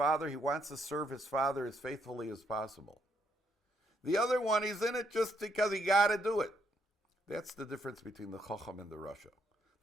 he wants to serve his father as faithfully as possible. The other one, he's in it just because he got to do it. That's the difference between the Chacham and the Rasha.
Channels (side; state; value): both; normal; correlation 0.73